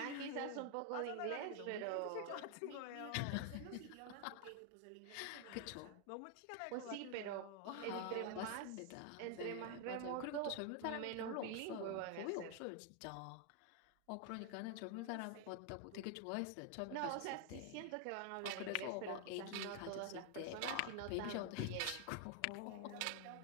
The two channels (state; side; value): different; both; correlation 0.00